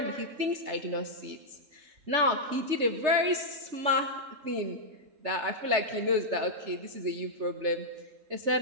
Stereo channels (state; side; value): late; left; 3.4 ms